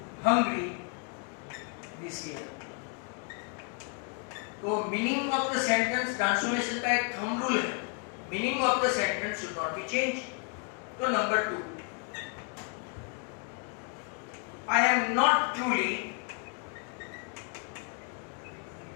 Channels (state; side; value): quieter; right; 38.8 dB